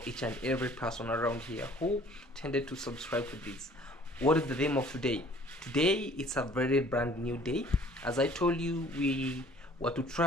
each and every person around here who tended to subscribe to this. What is the theme of today? Today it's a very brand new day. As I told you, we were to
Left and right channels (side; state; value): both; normal; correlation 0.53